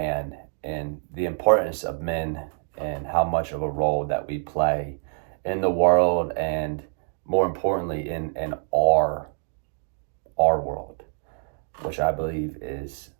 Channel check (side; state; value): left; silent; 61 dB below the other